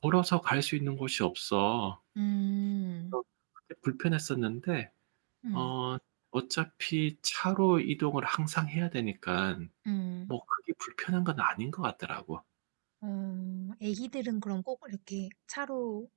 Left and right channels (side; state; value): left; silent; digital silence